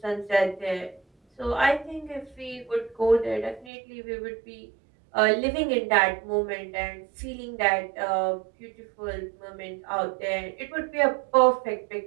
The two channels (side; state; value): left; drops out; at 3.7 s